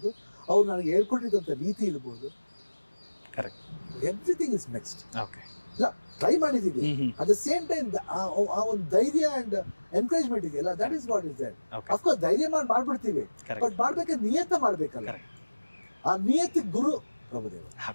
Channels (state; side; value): inverted; both; correlation -1.00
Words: ಅವ್ರು ನನಗೆ ಹೇಳ್ಕೊಟ್ಟಿದ್ದಂಥ ರೀತಿ ಇರ್ಬೋದು, correct, everything is next. Okay, ಇಲ್ಲ ಟ್ರೈ ಮಾಡಿದ್ದೀವಿ, ಅಟ್ ದ ಸೇಮ್ ಟೈಮ್ ಆ ಒಂದು ಧೈರ್ಯ ಅಂಡ್ ಎನ್ಕರೇಜ್ಮೆಂಟ್ ಇದೆಯಲ್ಲ, that is what is there. Of course ಧೈರ್ಯ ಮಾಡ್ಬಿಡ್ತೀವಿ, ಬಟ್ ಮಾಡ್ಬೇಕಾದ್ರೆ ನಿಯತ ಮಾಡ್ಬೇಕಲ್ಲ, ಆ ನಿಯತಿಗೆ ಗುರು ಪ್ರಭುದೇವ.